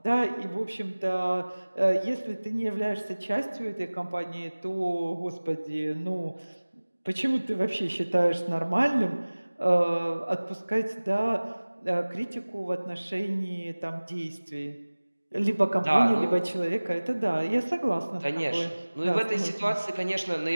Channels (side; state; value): both; inverted; correlation -1.00